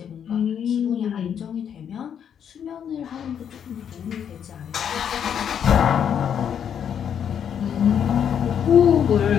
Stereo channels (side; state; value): right; quieter; 8.5 dB